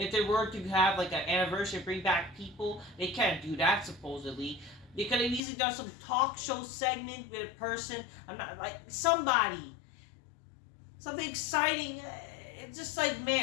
they were to have an anniversary, bring back people, they can't do that supposedly. They could have easily done some talk show segment with a person. I'm not somebody, something exciting. It's just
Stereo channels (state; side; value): drops out; right; at 5.4 s